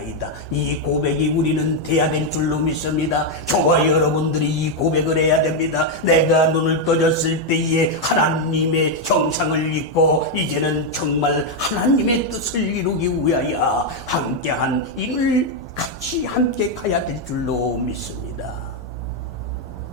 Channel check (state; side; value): normal; both; correlation 0.02